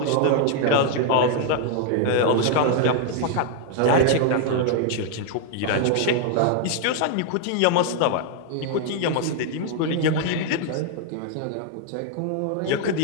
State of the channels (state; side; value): different; both; correlation 0.00